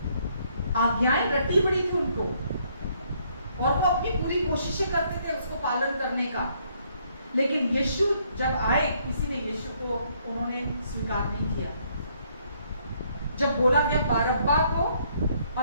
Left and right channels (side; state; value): both; inverted; correlation -0.69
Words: आज्ञाएं रट्टी पड़ी थी उनको, और वो अपनी पूरी कोशिशें करते थे उसको पालन करने का। लेकिन यीशु जब आए, किसी ने यीशु को उन्होंने स्वीकार नहीं किया। जब बोला गया बारब्बा को